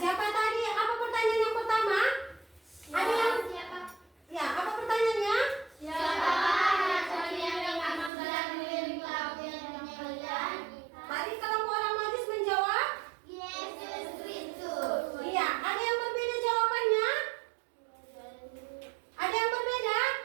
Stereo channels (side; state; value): left; drops out; at 8.1 s